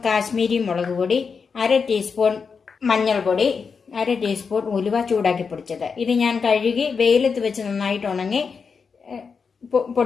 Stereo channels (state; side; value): quieter; right; 5.5 dB